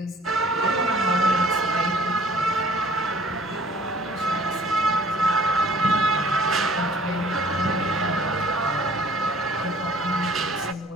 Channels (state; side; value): normal; both; correlation 0.54